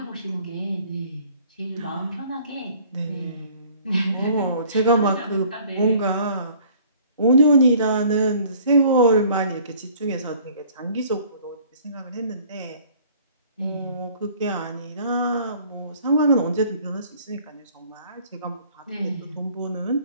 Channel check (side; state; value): both; inverted; correlation -0.54